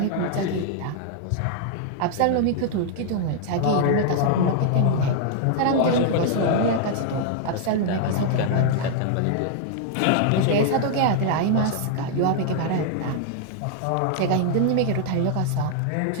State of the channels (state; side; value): different; both; correlation 0.00